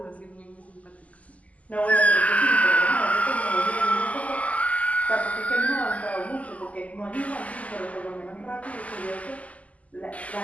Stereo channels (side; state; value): right; late; 0.071 ms